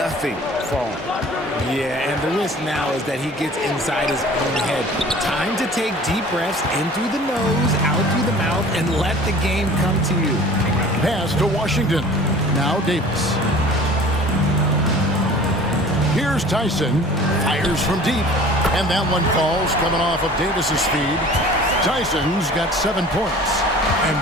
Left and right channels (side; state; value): both; normal; correlation 0.45